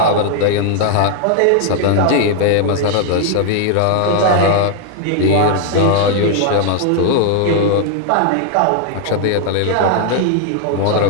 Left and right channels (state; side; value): different; both; correlation 0.00